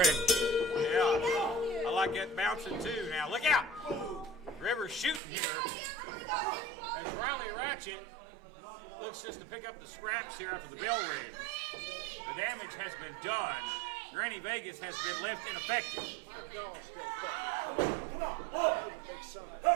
Yeah, I like that bouncing too. Now look out! Rivers shooting here. As Riley Ratchet looks just to pick up the scraps here after the bell rings. The damage has been done. Granny Vegas has been left ineffective. Come on. Whoa.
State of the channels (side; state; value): left; drops out; at 5.2 s